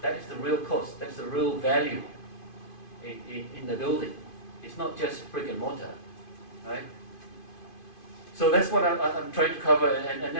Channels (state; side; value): late; right; 2.5 ms